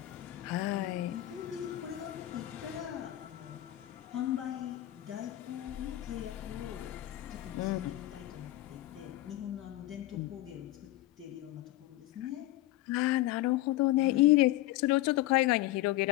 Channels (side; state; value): right; quieter; 16.1 dB